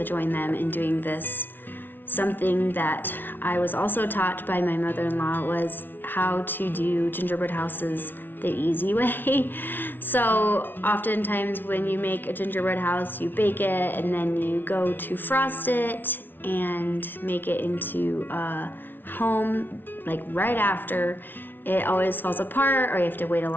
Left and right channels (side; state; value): right; late; 0.095 ms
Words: join them in doing this. Something that I was also taught by my mother-in-law was how to do gingerbread houses the easy way. So oftentimes when you make a gingerbread house, you bake it and then you go to frost it and make it into a home like right after. It always falls apart, or you have to wait a